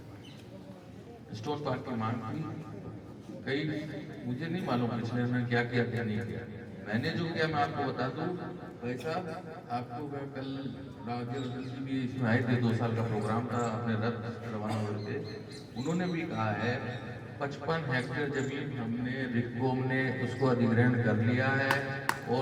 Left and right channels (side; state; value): both; identical; correlation 1.00